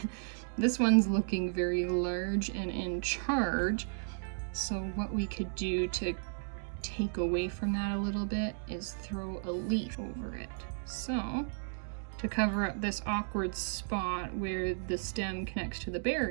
looking very large and in charge. So what we could do to take away from that a little bit is throw a leaf over it. So to cover up this awkward spot where the stem connects to the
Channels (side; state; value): left; silent; digital silence